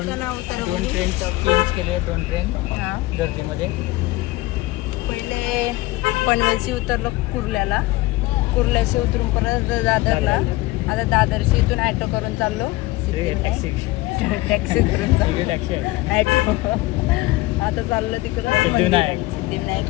उतारा 2 ट्रेन चेंज केले. 2 ट्रेन हां गर्दीमध्ये. पहिले पनवेलशी उतरलो कुर्ल्याशी उतरून परत दादरला. आता दादरशी इथून ॲटो करून चाललो टॅक्सी करून चाललो ॲटो. आता चाललो तिकडं सिद्धिविनायक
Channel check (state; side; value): quieter; right; 19.7 dB